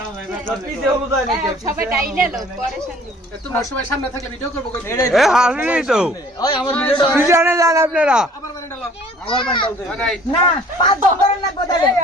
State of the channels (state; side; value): normal; both; correlation 0.53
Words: পিছে হলো তাই নাকি সবাই ডাইলে লোক পরেশান দিব তোমার সবাই সামনে থাকলে ভিডিও করব কই এ হাসলি তো ওই আমার ভিডিওটা পিছনে যান আপনারা আবার মানে ডালো আমার বান্ডাল দে নাই না পাঁচ ধরে না গোদা